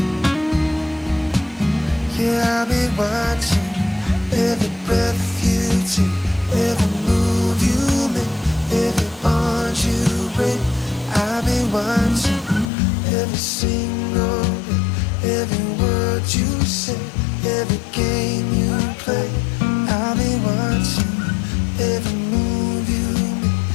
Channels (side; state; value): right; drops out; at 12.7 s